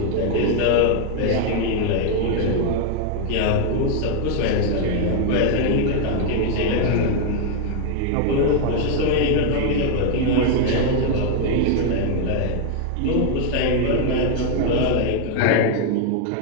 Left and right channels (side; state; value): both; different; correlation 0.00